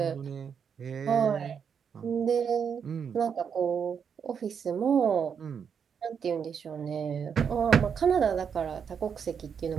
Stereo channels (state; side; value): quieter; left; 7.1 dB